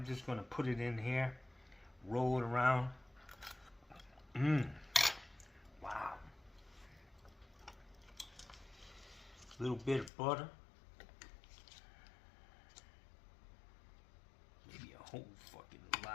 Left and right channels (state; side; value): drops out; right; at 10.1 s